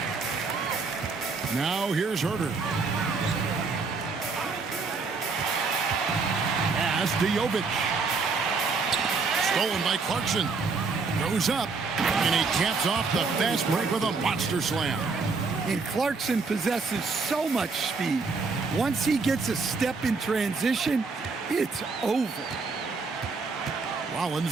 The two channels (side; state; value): left; quieter; 4.4 dB